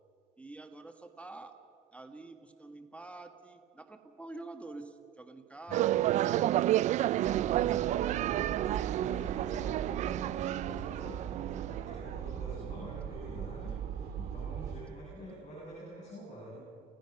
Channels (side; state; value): left; quieter; 11.2 dB